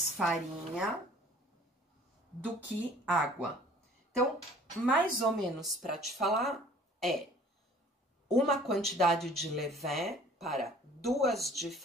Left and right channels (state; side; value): normal; both; correlation 0.52